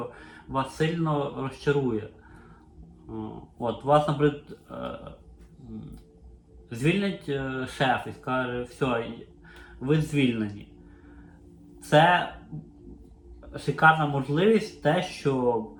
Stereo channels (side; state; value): both; identical; correlation 1.00